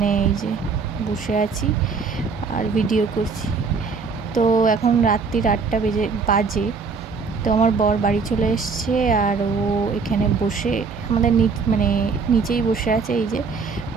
এই যে বসে আছি আর ভিডিও করছি। তো এখন রাত্রির 8টা বাজে। তো আমার বর বাড়ি চলে এসছে, আর ও এখানে বসে আমাদের নিচেই বসে আছে। এই যে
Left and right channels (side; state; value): left; quieter; 5.0 dB